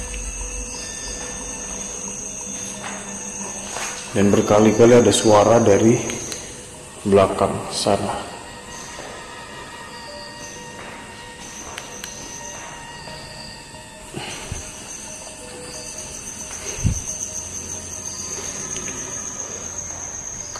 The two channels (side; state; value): both; identical; correlation 1.00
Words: Dan berkali-kali ada suara dari belakang sana.